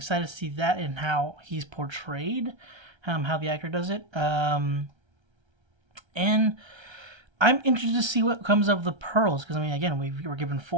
to see that and how he's portrayed, how the actor does it. And I'm interested to see what comes of the pearls, because I mean, again, we were given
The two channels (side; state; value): left; late; 1.3 ms